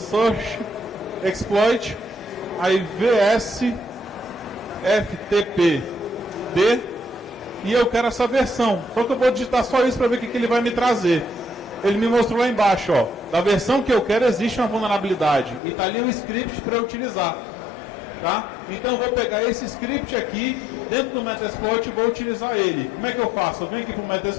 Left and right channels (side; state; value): right; drops out; at 15.6 s